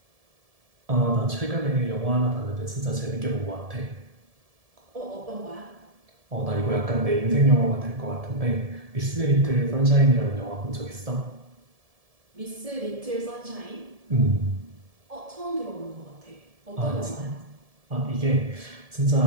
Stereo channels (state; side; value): late; left; 1.7 ms